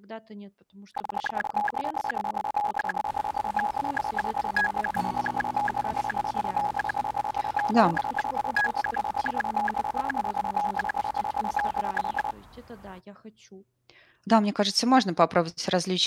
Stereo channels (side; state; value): both; identical; correlation 1.00